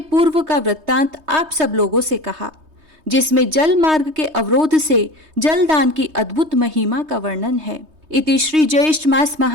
का वृत्तांत आप सब लोगों से कहा, जिसमें जल मार्ग के अवरोध से जलदान की अद्भुत महिमा का वर्णन है। इति श्री ज्येष्ठ मास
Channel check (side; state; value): left; late; 3.2 ms